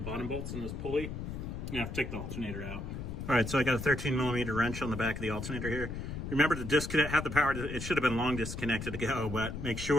bolts in this pulley, you have to take the alternator out. All right, so I got a 13mm wrench on the back of the alternator here. Remember to disconnect, have the power, it should have been long disconnected to go, but make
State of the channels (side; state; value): left; noise; rumble, 6 dB below the sound